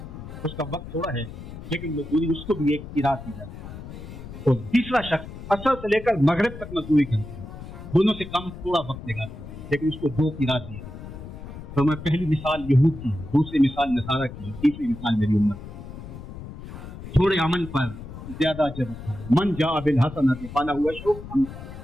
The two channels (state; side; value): noise; left; rumble, 12 dB below the sound